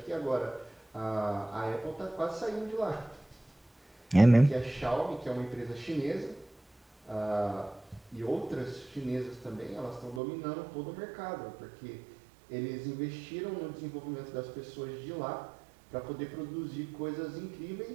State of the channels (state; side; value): drops out; left; at 10.2 s